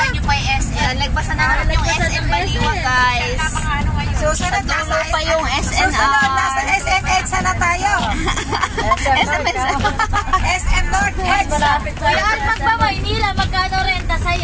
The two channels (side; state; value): both; identical; correlation 1.00